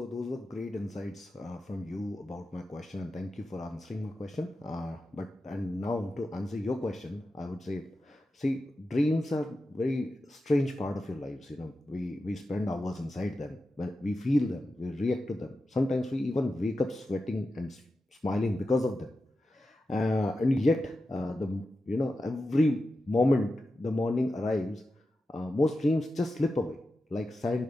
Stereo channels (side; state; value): both; normal; correlation 0.91